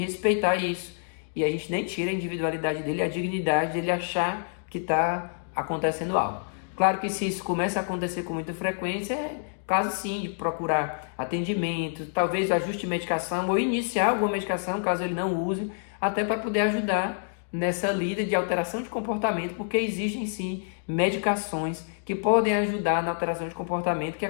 isso. E a gente nem tira a individualidade dele, a dignidade dele achar que está acontecendo algo. Claro que se isso começa a acontecer com muita frequência, é caso sim de procurar atendimento, talvez ajuste medicação ou iniciar alguma medicação, caso ele não use, até para poder ajudar nessa lida de alteração de comportamento, porque existem sim medicações que podem ajudar na alteração de comportamento que é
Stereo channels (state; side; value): silent; right; digital silence